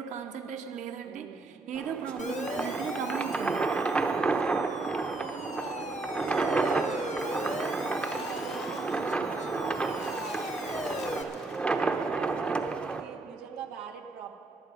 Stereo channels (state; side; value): quieter; left; 3.2 dB